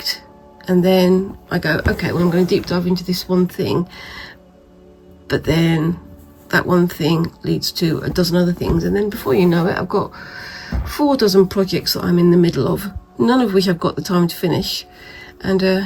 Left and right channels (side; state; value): both; identical; correlation 1.00